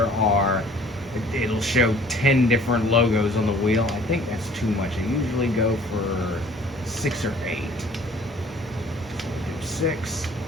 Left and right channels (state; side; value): normal; both; correlation 0.53